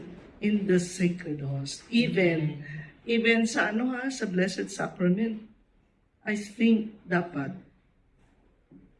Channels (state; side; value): identical; both; correlation 1.00